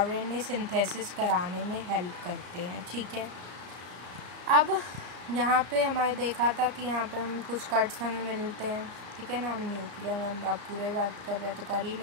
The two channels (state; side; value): late; left; 33 ms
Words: सिंथेसिस कराने में हेल्प करते हैं, ठीक है। अब यहाँ पे हमारे देखा था कि यहाँ पे हम कुछ कट्स हमें मिलते हैं, ठीक है ना। हम न्यूक्लियर में अब पूरे बात कर रहे हैं तो कर ही